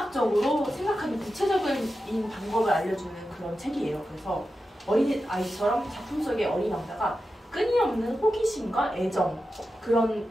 생각하는 구체적인 방법을 알려주는 그런 책이에요. 그래서 어린 아이처럼 작품 속의 어린 왕자가 끊임없는 호기심과 애정 그런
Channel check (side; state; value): both; normal; correlation 0.91